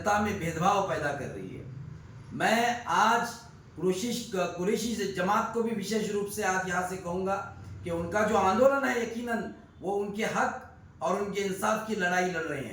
में भेदभाव पैदा कर रही है। मैं आज कुरैशी जमात को भी विशेष रूप से आज यहाँ से कहूँगा कि उनका जो आंदोलन है, यकीनन वो उनके हक और उनके इंसाफ की लड़ाई लड़ रहे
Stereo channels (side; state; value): both; identical; correlation 1.00